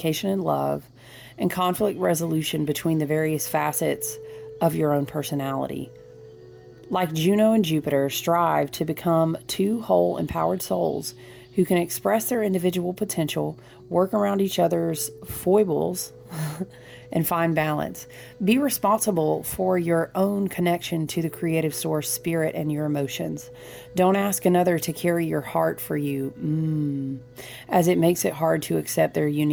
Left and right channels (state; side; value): identical; both; correlation 1.00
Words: and love, and conflict resolution between the various facets of your own personality. Like Juno and Jupiter, strive to become two whole, empowered souls who can express their individual potential, work around each other's foibles, and find balance. Be responsible for your own connection to the creative source, spirit, and your emotions. Don't ask another to carry your heart for you, as it makes it hard to accept their